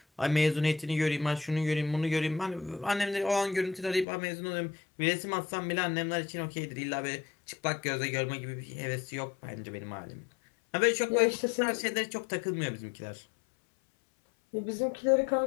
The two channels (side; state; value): right; drops out; at 4.0 s